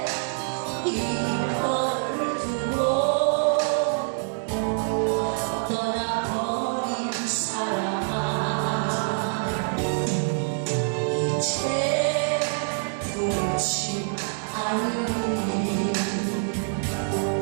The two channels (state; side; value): silent; left; digital silence